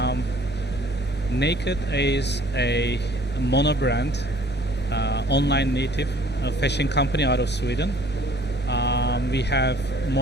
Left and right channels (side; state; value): both; normal; correlation 0.55